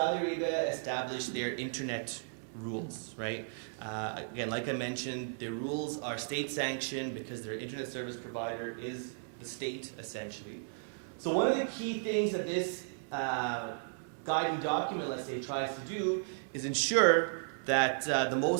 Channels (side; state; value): left; silent; digital silence